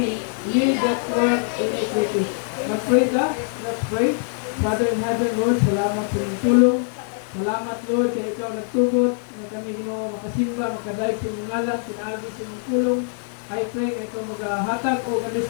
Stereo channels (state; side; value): silent; right; 63 dB below the other